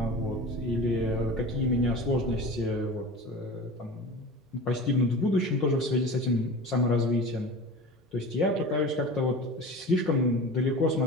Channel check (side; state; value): both; normal; correlation 0.33